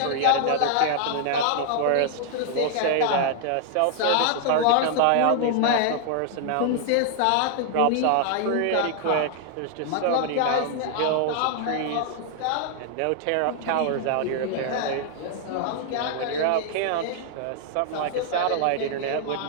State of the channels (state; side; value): different; both; correlation 0.00